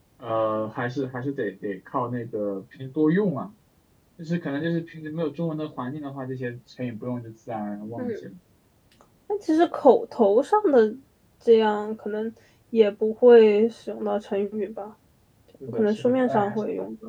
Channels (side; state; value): both; identical; correlation 1.00